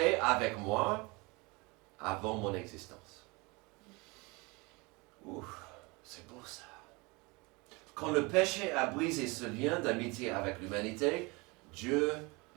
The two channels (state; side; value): quieter; left; 26.3 dB